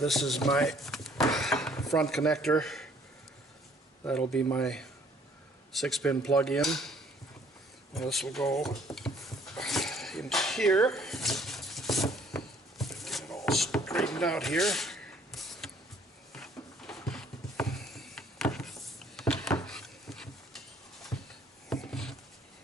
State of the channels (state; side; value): normal; both; correlation 0.60